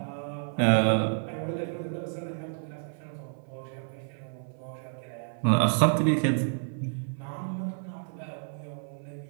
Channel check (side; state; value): left; silent; 58 dB below the other